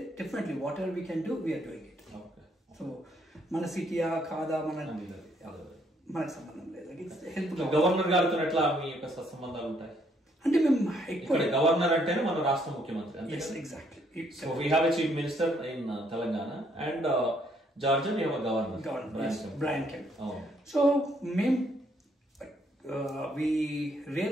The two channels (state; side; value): normal; both; correlation 0.69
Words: definitely whatever we can do we're doing it. So మన సిటీయా కాదా మనకు సంబంధం లేదు. హెల్ప్ గవర్నర్ గారితో ఎట్లా మీ యొక్క సంబంధాలు ఉంటాయి అంటే మేము ఇక్కడ గవర్నర్ అంటేనే మన రాష్ట్ర ముఖ్యమంత్రి. Exactly. So we have a chief minister in Telangana and Georgia we have a governor, Brian Kemp. So మేము we